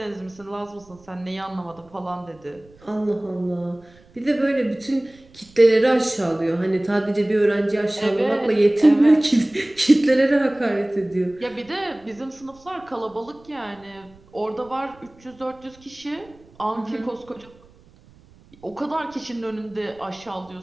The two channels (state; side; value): noise; right; rumble, 27 dB below the sound